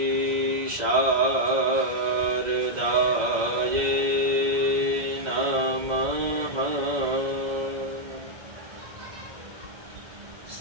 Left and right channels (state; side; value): late; left; 2.0 ms